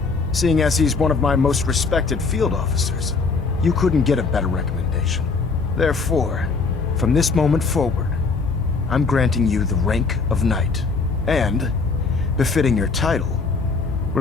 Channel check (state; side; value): quieter; right; 4.4 dB